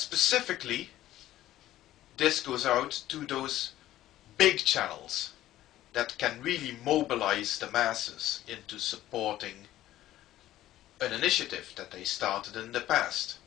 this goes out to those big channels that can really mobilize the masses into supporting an initiative that they started in the past.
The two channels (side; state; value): right; quieter; 14.1 dB